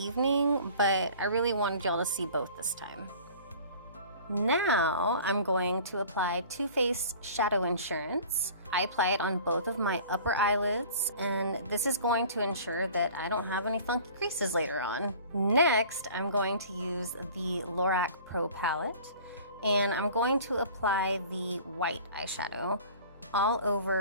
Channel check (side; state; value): both; inverted; correlation -0.45